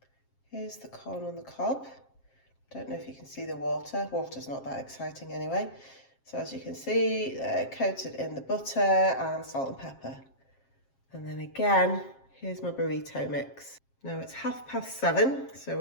Here's the corn on the cob. Don't know if you can see the water. Water's not that exciting anyway. So as you can see, they're coated in the butter and salt and pepper. And then again, here's my burrito mix. Now it's 7:30, so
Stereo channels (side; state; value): right; late; 7.5 ms